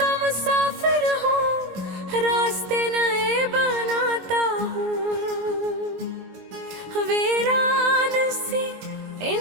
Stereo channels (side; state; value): left; late; 22 ms